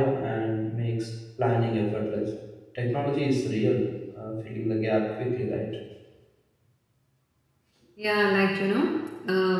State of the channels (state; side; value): identical; both; correlation 1.00